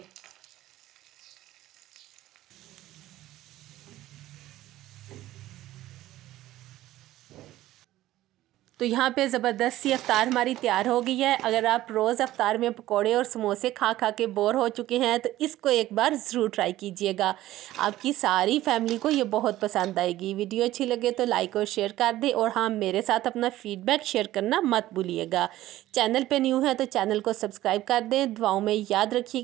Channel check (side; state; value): left; quieter; 15.1 dB